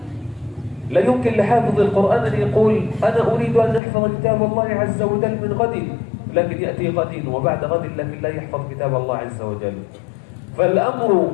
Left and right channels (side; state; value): right; drops out; at 3.8 s